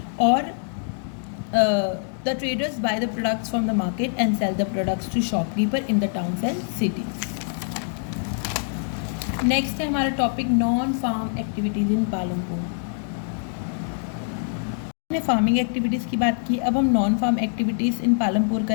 और the traders buy the products from the market and sell the products to shopkeeper in the towns and cities. Next है हमारा topic non farm activities in Palampur. हमने फार्मिंग एक्टिविटीज़ की बात की, अब हम non farm activities in Palampur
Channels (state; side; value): silent; right; digital silence